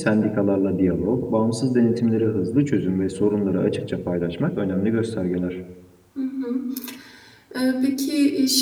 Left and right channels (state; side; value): identical; both; correlation 1.00